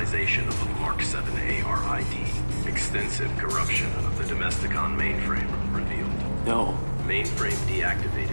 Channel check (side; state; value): both; inverted; correlation -1.00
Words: of the Mark 7 ARID. Extensive corruption of the Domesticon mainframe revealed. No. Mainframe